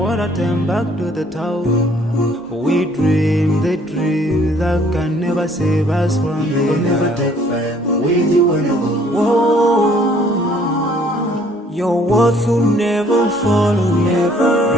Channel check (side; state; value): both; normal; correlation 0.60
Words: water turn back to the town. We dream the dream that can never save us from We'll never the take fame with you when I go. Your worth will never follow you.